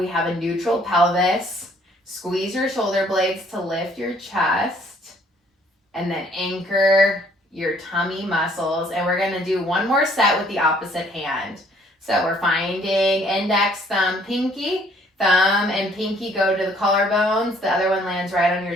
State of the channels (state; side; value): normal; both; correlation 0.61